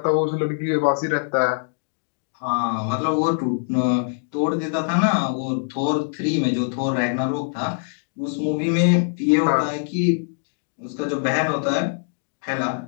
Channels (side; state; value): right; silent; digital silence